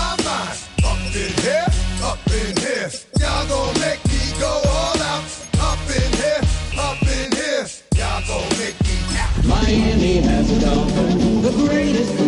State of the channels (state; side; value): identical; both; correlation 1.00